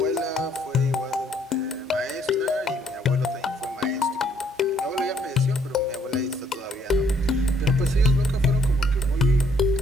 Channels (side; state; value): both; normal; correlation 0.67